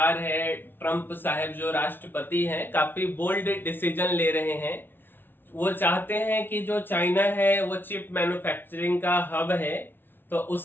है, ट्रंप साहब जो राष्ट्रपति हैं, काफी बोल्ड डिसीजन ले रहे हैं। वो चाहते हैं कि जो चाइना है वो चिप मैन्युफैक्चरिंग का हब है, तो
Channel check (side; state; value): right; late; 0.10 ms